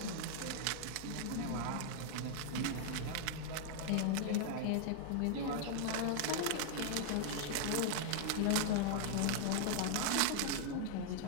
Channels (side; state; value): both; different; correlation -0.01